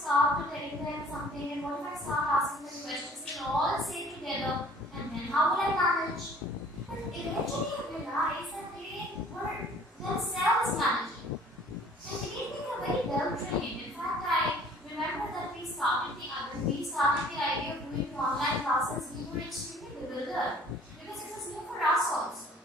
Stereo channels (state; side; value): normal; both; correlation 0.53